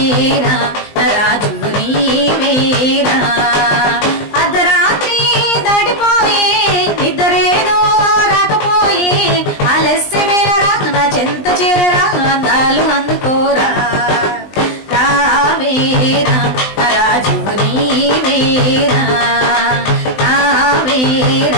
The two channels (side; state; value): right; late; 20 ms